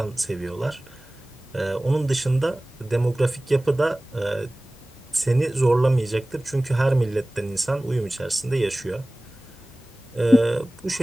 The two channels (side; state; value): both; normal; correlation 0.98